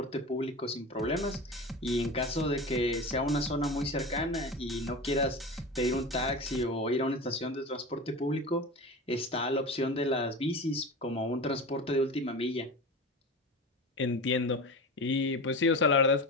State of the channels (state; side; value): normal; both; correlation 0.29